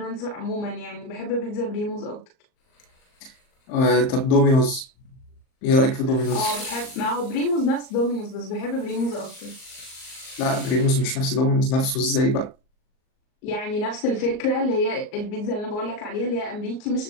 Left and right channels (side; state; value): right; late; 38 ms